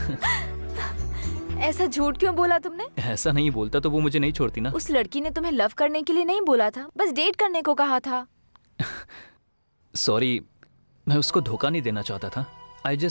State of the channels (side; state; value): both; inverted; correlation -1.00